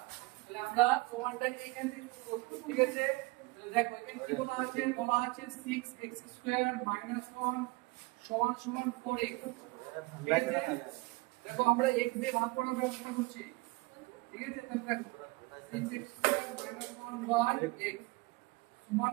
তাহলে আমরা প্রমাণটা এইখান থেকে শুরু করব। ঠিক আছে, দেখো এখানে কি বলা আছে 6x স্কয়ার মাইনাস 1 সমান সমান 4x। ঠিক আছে, দেখো আমরা x দিয়ে ভাগ করার ব্যবস্থা করছি। ঠিক আছে, তাহলে দেখো 6x square minus 1 by x সমান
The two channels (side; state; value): left; quieter; 23.7 dB